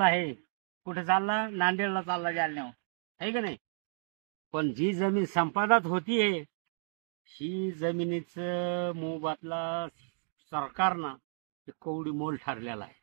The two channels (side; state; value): left; silent; digital silence